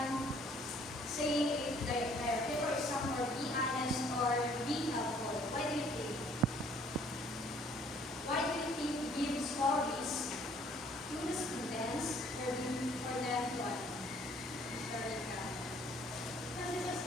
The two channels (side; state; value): both; normal; correlation 0.59